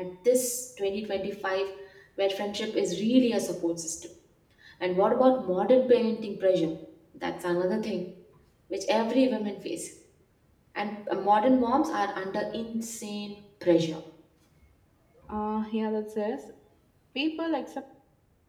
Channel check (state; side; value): identical; both; correlation 1.00